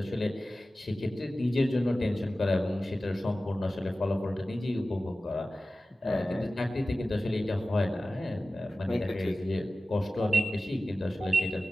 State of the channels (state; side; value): normal; both; correlation 0.95